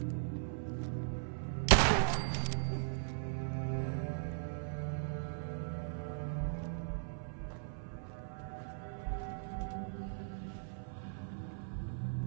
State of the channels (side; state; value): left; silent; 52 dB below the other